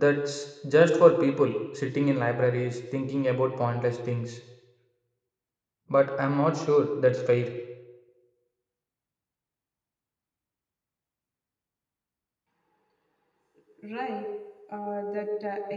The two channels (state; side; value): identical; both; correlation 1.00